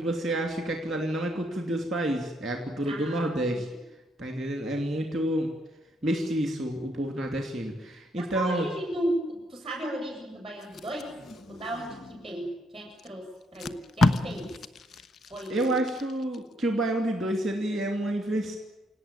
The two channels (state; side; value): normal; both; correlation 0.74